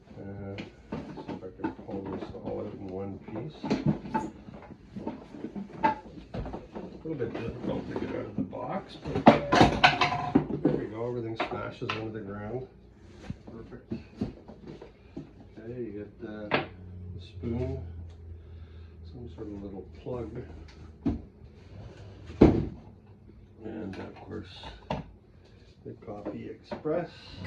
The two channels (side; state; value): both; identical; correlation 1.00